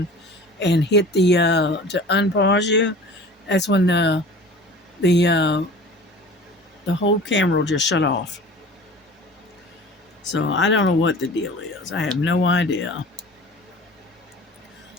hit the to unpause you, that's when the uh, the whole camera will just shut off. So I don't know what the deal is. I have no idea.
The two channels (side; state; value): both; normal; correlation 0.41